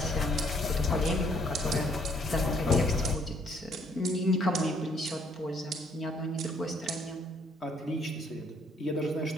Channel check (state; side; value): normal; both; correlation 0.65